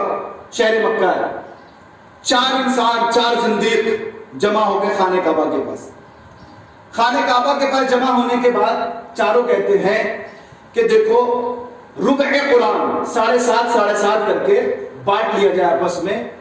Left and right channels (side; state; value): both; identical; correlation 1.00